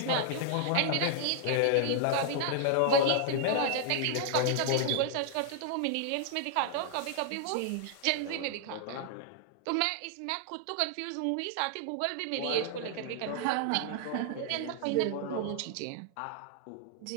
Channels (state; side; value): different; both; correlation 0.00